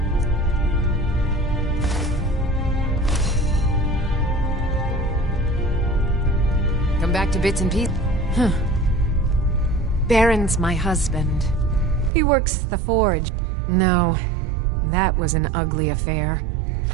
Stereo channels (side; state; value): left; drops out; at 12.1 s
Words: Come back to bits and pieces. Huh. Baron's my husband. He works the forge. No, that was an ugly affair.